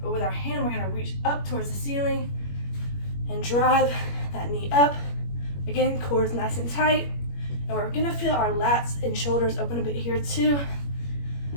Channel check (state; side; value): late; right; 21 ms